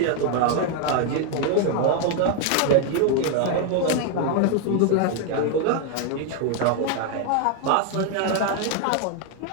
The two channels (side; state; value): both; different; correlation 0.01